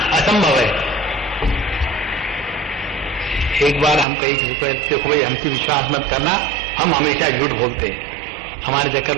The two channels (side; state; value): left; drops out; at 4.0 s